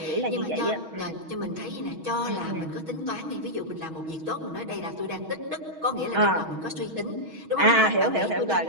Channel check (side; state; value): left; late; 6.3 ms